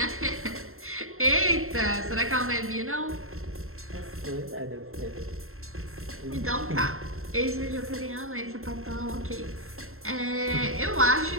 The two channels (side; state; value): left; late; 0.62 ms